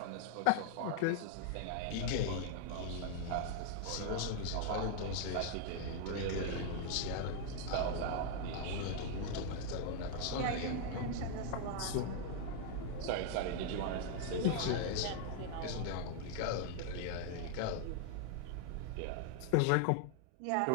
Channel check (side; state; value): both; different; correlation 0.00